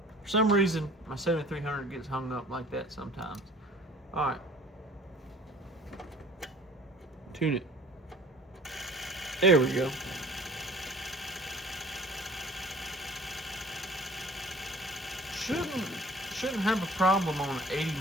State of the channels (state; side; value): normal; both; correlation 0.49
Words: for some reason, my 7300 gets hung up like that sometimes. All right. Tune it. There we go. Shouldn't have a problem on 80